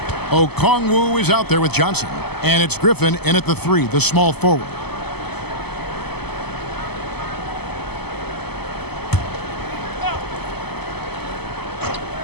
Okongwu is out there with Johnson. And it's Griffin in at the 3, the small forward.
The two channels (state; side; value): late; right; 0.97 ms